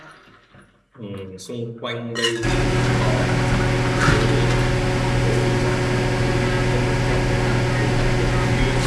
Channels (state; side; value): identical; both; correlation 1.00